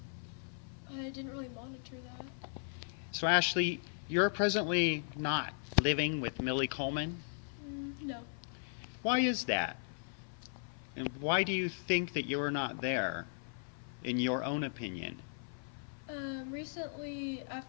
I didn't really monitor that. So Ashley, you're presently not living with Millie Coleman. No. Why is that? And why do you think that you're not there, in your own opinion? Recently,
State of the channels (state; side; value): silent; right; 53 dB below the other